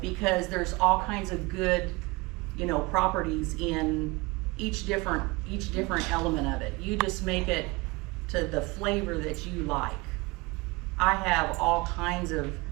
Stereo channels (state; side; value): quieter; left; 24.2 dB